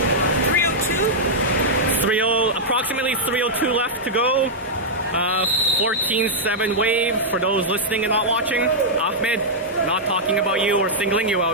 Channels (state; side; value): normal; both; correlation -0.07